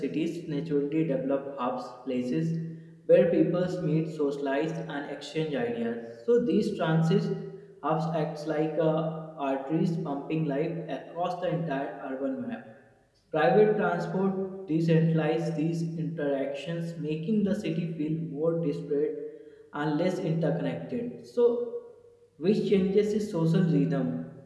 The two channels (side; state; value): both; identical; correlation 1.00